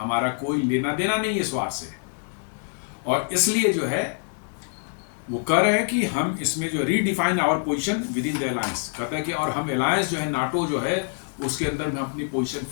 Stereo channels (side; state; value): right; silent; 62 dB below the other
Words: कोई लेना देना नहीं इस वार से। और इसलिए जो है वो कह रहे हैं कि हम इसमें जो redefine our position within the alliance. कहते हैं कि और हम अलायंस जो है नाटो जो है उसके अंदर में अपनी पोजीशन